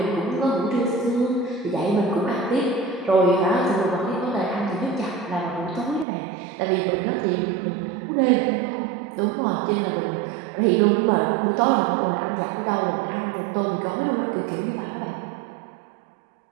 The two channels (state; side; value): drops out; left; at 6.1 s